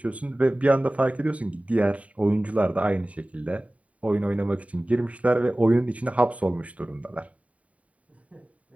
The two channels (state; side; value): late; left; 0.067 ms